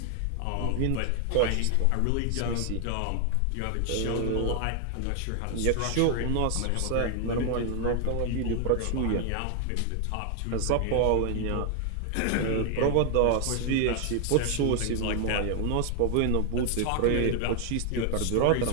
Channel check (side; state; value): both; different; correlation 0.00